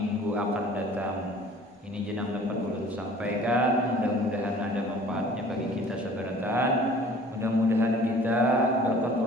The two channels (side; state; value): both; normal; correlation 0.50